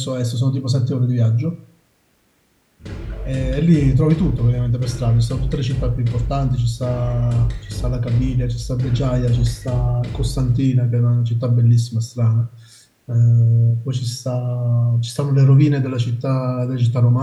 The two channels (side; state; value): both; identical; correlation 1.00